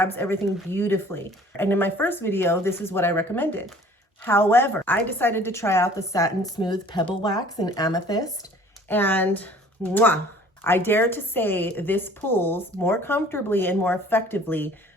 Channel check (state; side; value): normal; both; correlation 0.51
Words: everything beautifully. And in my first video, this is what I recommended. However, I decided to try out the Satin Smooth Pebble Wax in Amethyst, and mwah, I dare to say this pulls more comfortably and more effectively